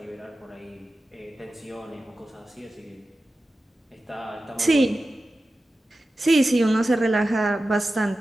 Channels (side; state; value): both; normal; correlation 0.94